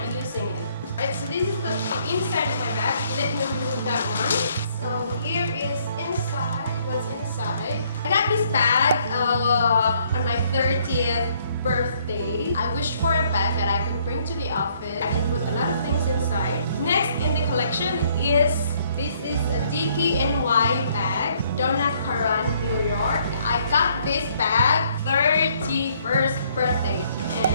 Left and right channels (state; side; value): inverted; both; correlation -0.65